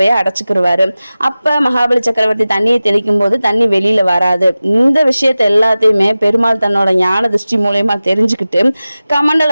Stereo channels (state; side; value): inverted; both; correlation -0.96